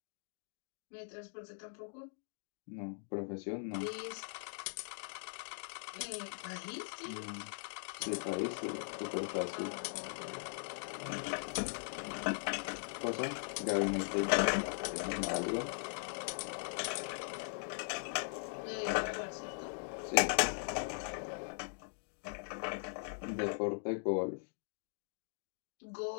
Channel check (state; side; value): silent; right; digital silence